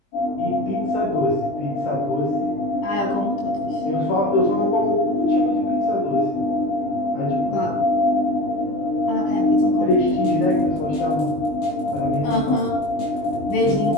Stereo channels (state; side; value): late; right; 20 ms